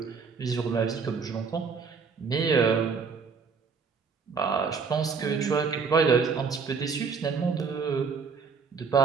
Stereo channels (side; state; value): left; quieter; 5.4 dB